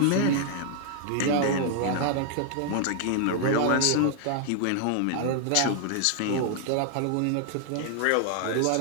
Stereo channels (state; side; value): different; both; correlation 0.00